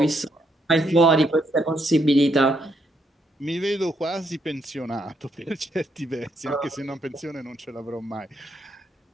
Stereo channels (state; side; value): normal; both; correlation 0.76